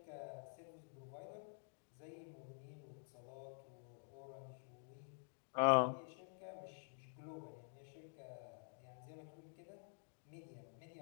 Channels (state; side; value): silent; right; digital silence